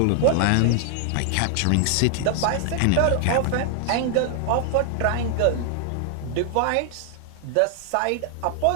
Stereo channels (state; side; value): different; both; correlation 0.00